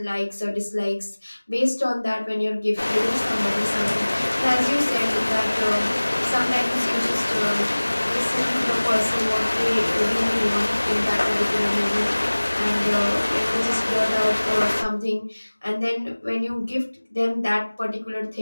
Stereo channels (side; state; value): both; inverted; correlation -1.00